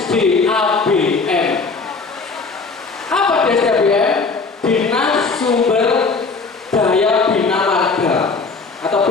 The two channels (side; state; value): right; quieter; 4.3 dB